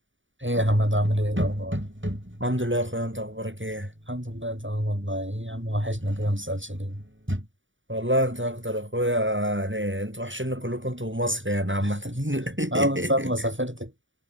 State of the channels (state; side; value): late; left; 0.56 ms